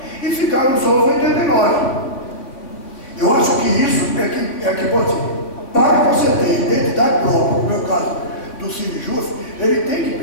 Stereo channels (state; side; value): late; right; 3.6 ms